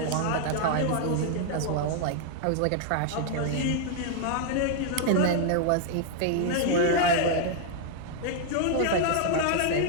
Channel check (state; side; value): different; both; correlation 0.00